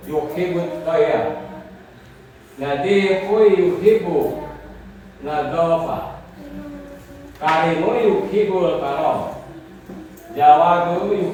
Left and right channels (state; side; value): identical; both; correlation 1.00